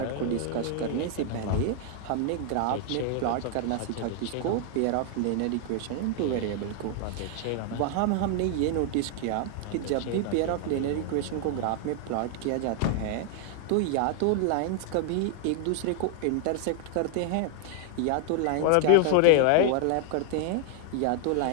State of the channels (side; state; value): both; different; correlation 0.00